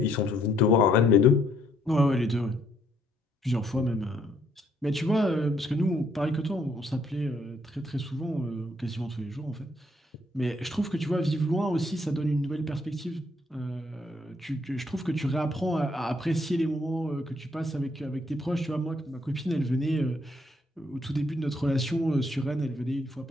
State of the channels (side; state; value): both; normal; correlation 0.69